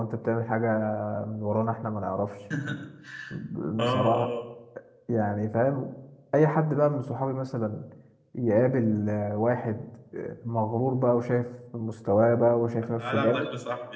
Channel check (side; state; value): both; identical; correlation 1.00